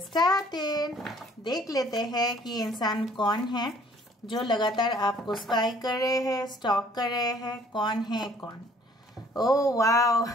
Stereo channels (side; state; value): both; normal; correlation 0.58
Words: started. देख लेते हैं कि इंसान कौन है जो लगातार आपको स्पाई कर रहे हैं, स्टॉक कर रहे हैं। कौन है कौन? Oh wow,